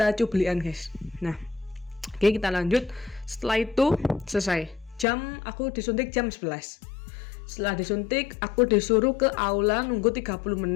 cublian guys. Nah, oke, kita lanjut. Setelah itu selesai. Aku disuntik jam 11. Setelah disuntik, aku disuruh ke aula nunggu 30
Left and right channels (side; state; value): right; drops out; at 5.1 s